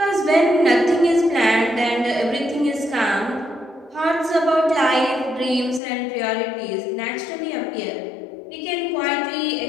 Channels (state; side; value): drops out; right; at 5.8 s